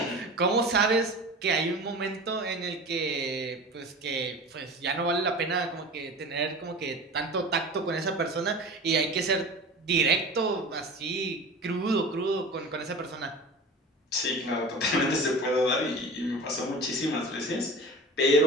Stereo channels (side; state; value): both; normal; correlation 0.35